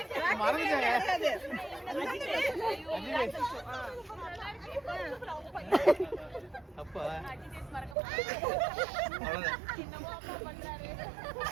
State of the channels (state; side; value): drops out; left; at 8.0 s